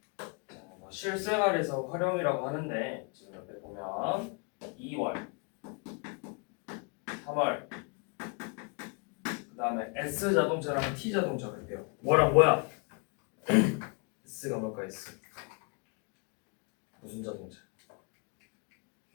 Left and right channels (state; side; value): quieter; right; 34.3 dB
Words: 실생활에서 활용이라고 하는데 지금 옆에 보면 2월, 3월, 그 다음에 S자동차랑 T자동차가 있대요. 뭐랑 뭐야? S가 뭘까? S 무슨 자동차?